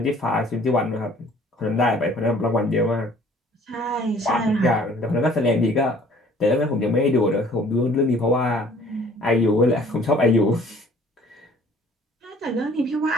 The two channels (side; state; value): both; normal; correlation 0.54